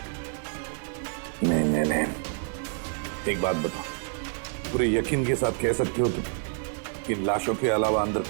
नहीं नहीं नहीं, एक बात बताओ, पूरे यकीन के साथ कह सकते हो तुम कि लाशों के अलावा अंदर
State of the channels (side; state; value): left; silent; 58 dB below the other